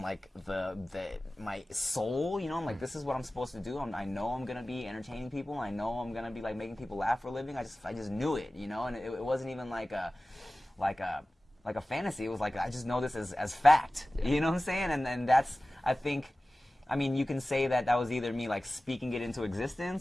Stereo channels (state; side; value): normal; both; correlation 0.97